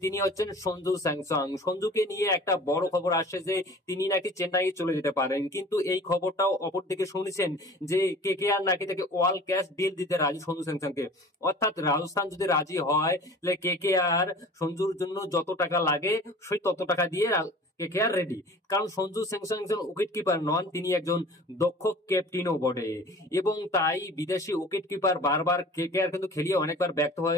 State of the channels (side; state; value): both; normal; correlation 0.43